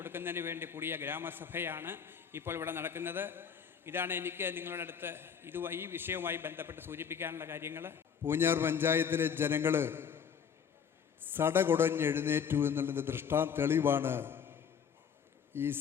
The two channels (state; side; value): quieter; right; 7.3 dB